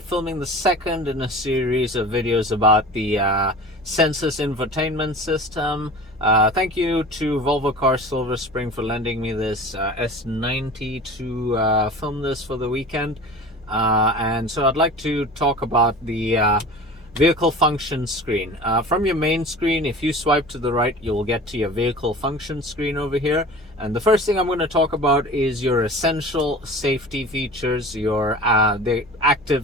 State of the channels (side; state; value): both; normal; correlation 0.38